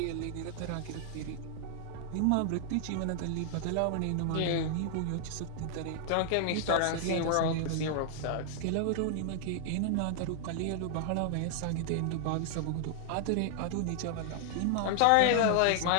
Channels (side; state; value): both; different; correlation 0.00